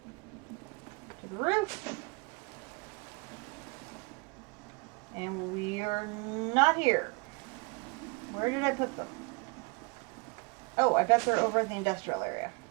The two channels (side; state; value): left; quieter; 30.1 dB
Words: To the roof. And we're not here. Where did I put them? Oh, I bet they're over in the industrial area.